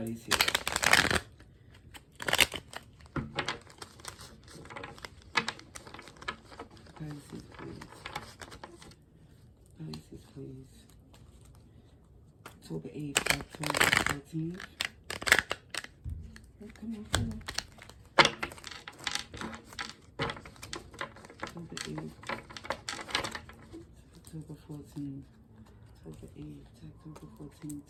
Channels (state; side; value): identical; both; correlation 1.00